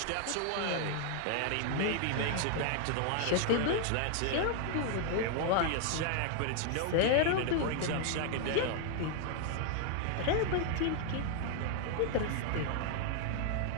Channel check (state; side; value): different; both; correlation 0.00